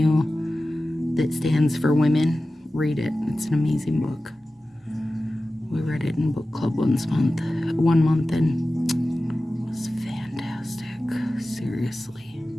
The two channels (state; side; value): normal; both; correlation 0.95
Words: that stands for women, read it. It's an amazing book. We read it in book club one month, and it was fantastic. Seriously.